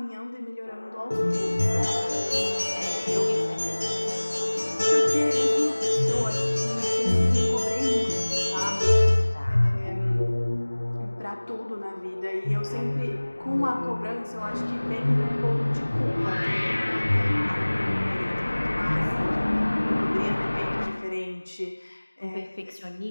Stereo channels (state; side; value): inverted; both; correlation -1.00